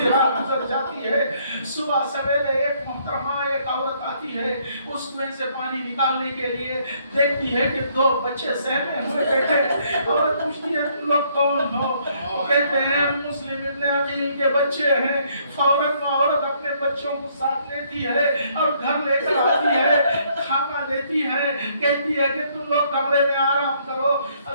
रात गुजर जाती है। सुबह सवेरे एक मोहतरमा, एक औरत आती है, उस कुएं से पानी निकालने के लिए, देखती है कि दो बच्चे सहमे हुए बैठे। औरत पूछती है तुम लोग कौन हो? कहते हैं मुस्लिम इब्न अकील के बच्चे हैं। फौरन औरत अपने बच्चों को साथ लेती है और घर लेकर आती है, खाना देती है, कहती है कि तुम लोग कमरे में आराम करो।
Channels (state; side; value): inverted; both; correlation -0.67